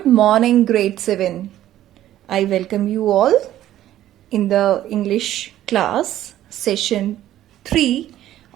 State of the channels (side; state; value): left; quieter; 13.0 dB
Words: morning, grade 7. I welcome you all in the English class, session 3